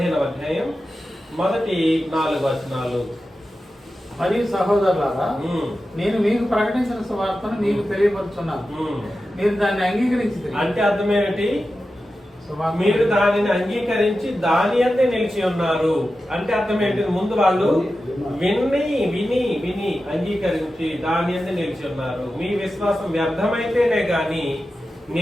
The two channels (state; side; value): normal; both; correlation 0.92